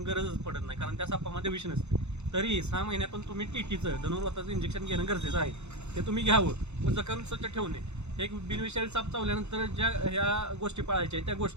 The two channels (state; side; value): late; left; 0.82 ms